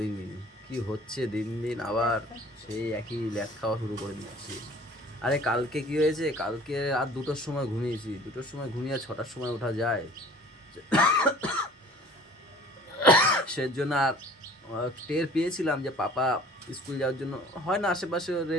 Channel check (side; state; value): both; normal; correlation 0.48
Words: কি হচ্ছে দিন দিন আবার সেই একই ল্যাট খাওয়া শুরু করে দিচ্ছি। আরে কালকে কি হয়েছে, কালকে রাত 2টোর সময় ঘুমিয়েছি। 2টোর সময় ঘুমিয়ে 6টার সময় ওঠা যায়? সেজন্য আর টের পেয়েছিলাম যে পাপা স্কুল যাওয়ার জন্য হয় না, আশেপাশে